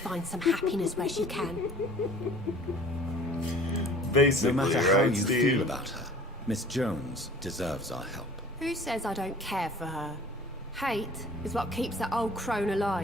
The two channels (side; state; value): both; normal; correlation 0.48